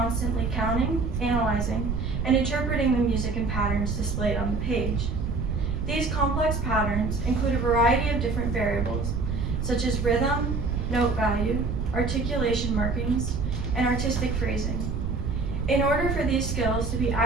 counting, analyzing, and interpreting the music and patterns displayed on the page. These complex patterns include a variety of different variables, such as rhythm, note value, articulation markings, and artistic phrasing. In order for these skills to be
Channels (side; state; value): right; noise; rumble, 2 dB below the sound